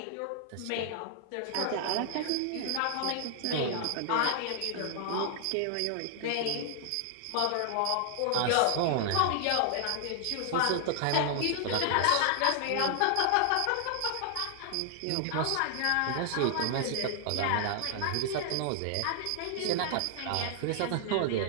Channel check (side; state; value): both; different; correlation 0.00